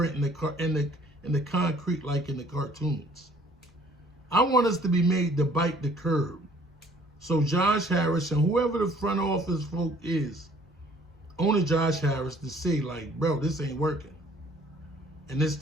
in the concrete like in the cartoons. I want us to be made to bite the curb. So Josh Harris and whoever the front office folk is, owner Josh Harris, to say like, bro, this ain't working. And it's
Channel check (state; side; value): normal; both; correlation 0.57